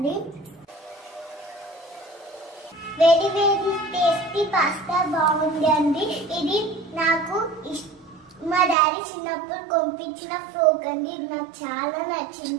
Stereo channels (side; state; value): left; drops out; at 8.8 s